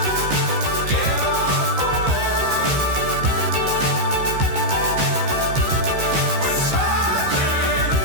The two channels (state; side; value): late; left; 15 ms